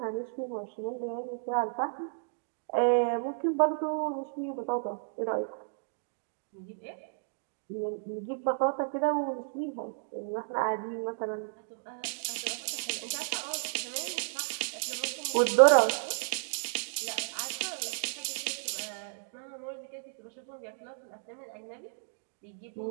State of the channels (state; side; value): silent; left; digital silence